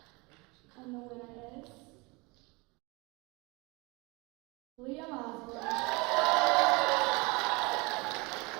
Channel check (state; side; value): quieter; left; 26.6 dB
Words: And the winner is Liam Osborne.